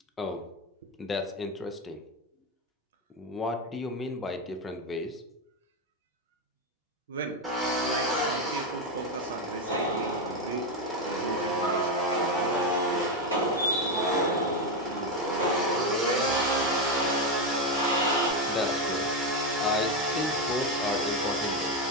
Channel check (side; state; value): both; normal; correlation 0.09